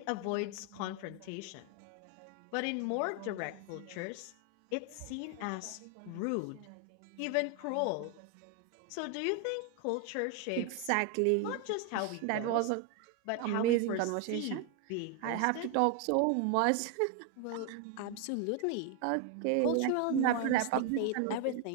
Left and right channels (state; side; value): different; both; correlation 0.01